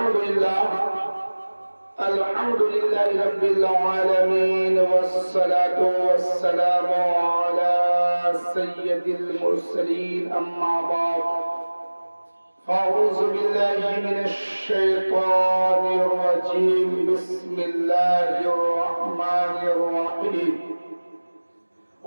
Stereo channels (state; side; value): inverted; both; correlation -1.00